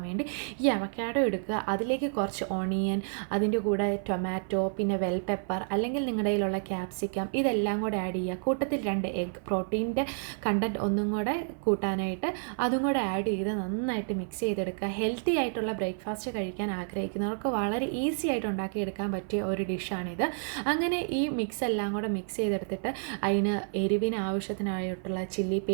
വേണ്ടി ഈ അവക്കാഡോ എടുക്കുക, അതിലേക്ക് കുറച്ച് ഓണിയൻ, അതിൻ്റെ കൂടെ ടൊമാറ്റോ, പിന്നെ വെൽ പെപ്പർ അല്ലെങ്കിൽ നിങ്ങളുടെ കയ്യിലുള്ള ക്യാപ്സിക്കം ഇതെല്ലാം കൂടെ ആഡ് ചെയ്യുക. കൂട്ടത്തിൽ 2 എഗ്, പ്രോട്ടീൻ്റെ കണ്ടൻറ്റ് ഒന്നും കൂടെ കൂട്ടാനായിട്ട് അതും കൂടെ ആഡ് ചെയ്ത് നന്നായിട്ട് മിക്സ് ചെയ്തെടുക്കുക. ഹെൽത്തി ആയിട്ടുള്ള ബ്രേക്ക്ഫാസ്റ്റ് കഴിക്കാൻ ആഗ്രഹിക്കുന്നവർക്ക് വളരെ ഈസി ആയിട്ട് ഉണ്ടാക്കിയെടുക്കാൻ പറ്റിയ ഒരു ഡിഷാണിത്. അങ്ങനെ ഈ മിക്സ് എല്ലാം കൂടെ മിക്സ് ചെയ്തെടുത്തിട്ട് അതിന് എരിവിന് ആവശ്യത്തിനായിട്ടുള്ള ചില്ലി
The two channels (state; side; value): silent; left; 55 dB below the other